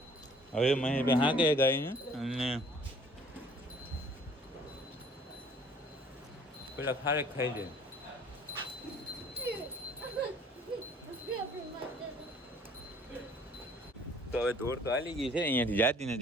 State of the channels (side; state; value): both; normal; correlation 0.55